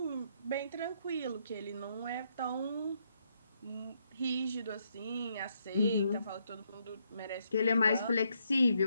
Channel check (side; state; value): both; inverted; correlation -0.75